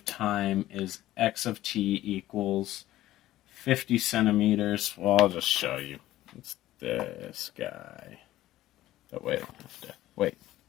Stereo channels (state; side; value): quieter; right; 14.9 dB